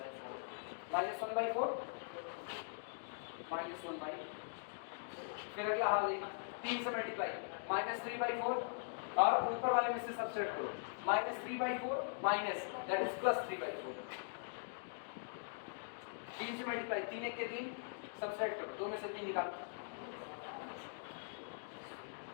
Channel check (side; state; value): right; silent; digital silence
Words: -1/4 -1/, फिर अगला हाल देखो, 3 से मल्टीप्लाई -3/4, और ऊपर वाले में से सब्ट्रैक्ट करो, -3/4 माइनस दैट इज +3/4, 3 से मल्टीप्लाई, 3 1 के 3, सब्ट्रैक्ट करो, 2 में से 3 निकालो।